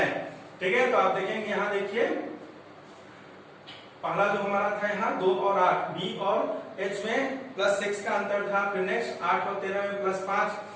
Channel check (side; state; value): both; identical; correlation 1.00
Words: ठीक है। तो आप देखेंगे यहाँ देखिए पहला जो हमारा था यहाँ 2 और 8, B और H में +6 का अंतर था। फिर नेक्स्ट 8 और 13 में +5,